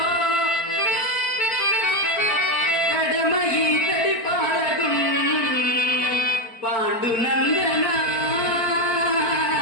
కడమ ఈతడి పాలగు పాండునందన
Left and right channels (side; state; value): right; late; 4.4 ms